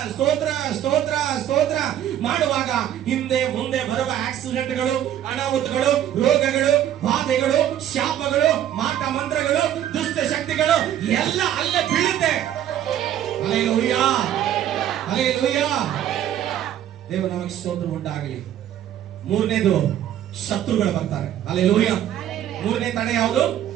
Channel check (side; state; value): left; quieter; 11.2 dB